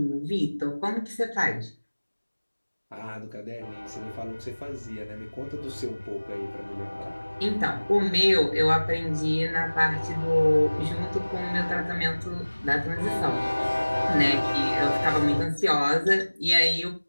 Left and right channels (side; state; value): both; inverted; correlation -1.00